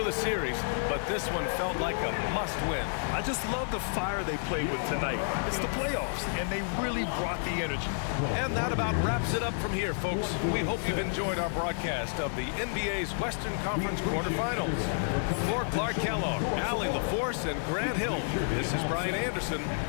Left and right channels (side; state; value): right; silent; digital silence